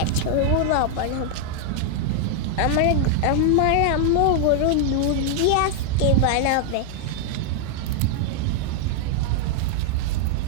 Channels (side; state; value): both; different; correlation 0.00